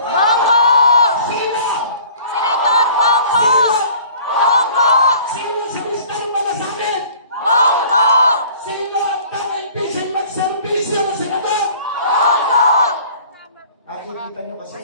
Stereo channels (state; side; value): inverted; both; correlation -0.49